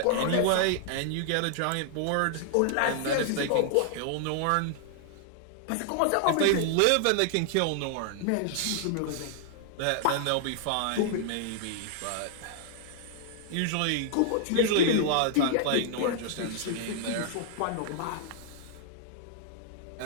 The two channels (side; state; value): both; different; correlation -0.01